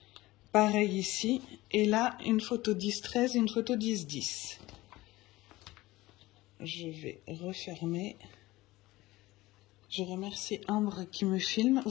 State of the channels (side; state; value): right; quieter; 18.6 dB